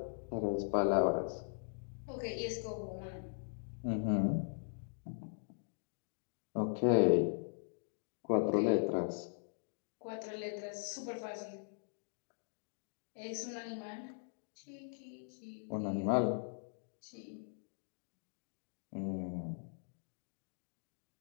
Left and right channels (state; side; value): silent; right; digital silence